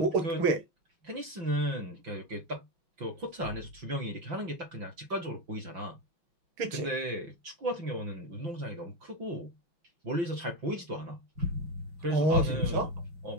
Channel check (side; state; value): left; late; 5.8 ms